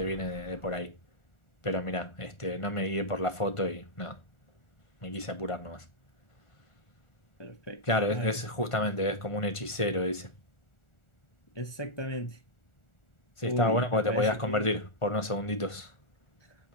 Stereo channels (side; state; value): right; late; 1.5 ms